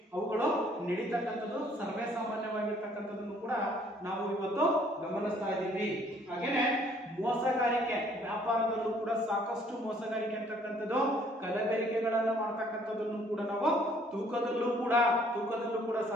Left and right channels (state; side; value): normal; both; correlation 0.61